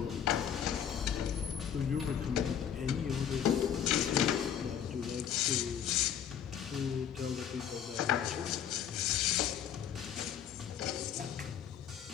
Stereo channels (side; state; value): right; quieter; 8.9 dB